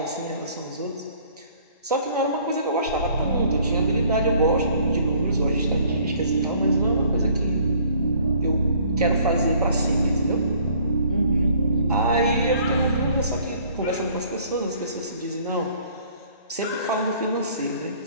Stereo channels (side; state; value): both; inverted; correlation -0.58